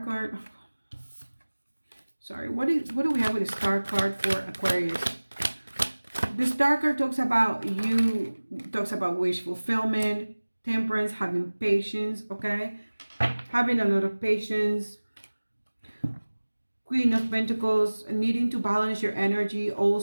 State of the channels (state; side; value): inverted; both; correlation -1.00